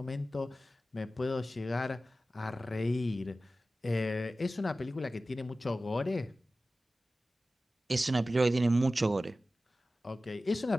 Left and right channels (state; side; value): normal; both; correlation 0.95